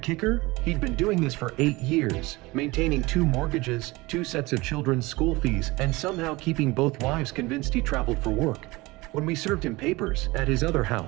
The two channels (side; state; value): left; quieter; 21.9 dB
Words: He'd been doing this for 8 years, maintaining 2 mortgages, 2 sets of children's school fees, and somehow keeping both wives convinced he traveled for work. When we served him papers at his other